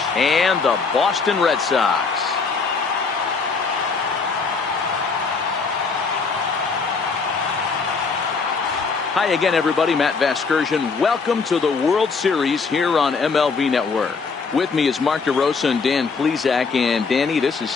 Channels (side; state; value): right; quieter; 4.8 dB